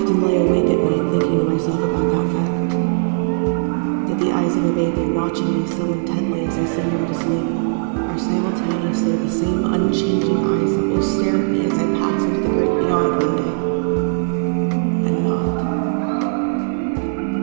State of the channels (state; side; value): silent; left; digital silence